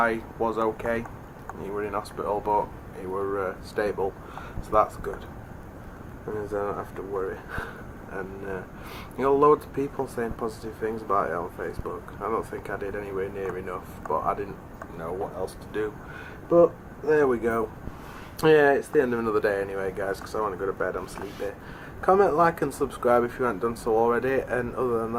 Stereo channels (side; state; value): both; identical; correlation 1.00